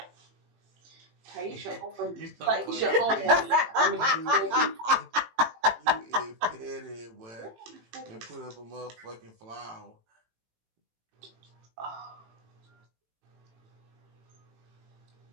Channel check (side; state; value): left; late; 18 ms